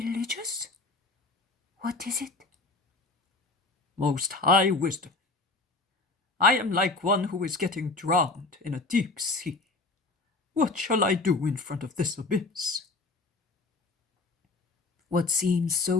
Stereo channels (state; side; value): quieter; right; 3.6 dB